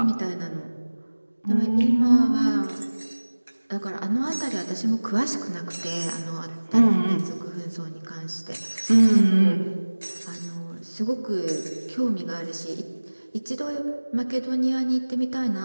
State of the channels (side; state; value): both; inverted; correlation -1.00